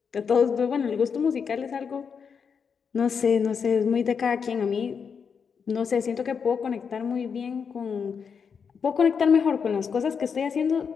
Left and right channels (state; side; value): quieter; right; 6.3 dB